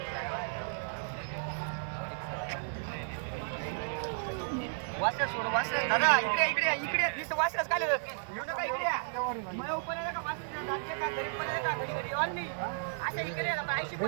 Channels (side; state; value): left; silent; digital silence